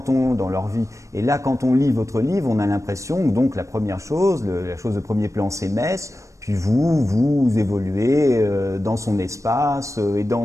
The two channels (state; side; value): late; left; 0.15 ms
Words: leur vie, et là, quand on lit votre livre, on a l'impression que donc la première chose, la chose de premier plan, c'est Metz. Puis vous évoluez dans son espace et dans